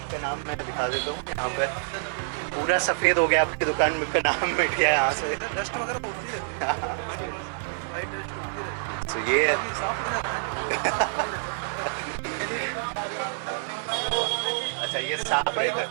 का नाम मैं दिखा देता हूँ। यहाँ पर पूरा सफ़ेद हो गया, आपकी दुकान का नाम मिट गया यहाँ से। डस्ट वगैरह उड़ती रहती है, वाइट डस्ट उड़ती रहती है, तो ये बाकी साफ हो जाता है। अच्छा ये साफ रहता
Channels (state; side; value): silent; left; digital silence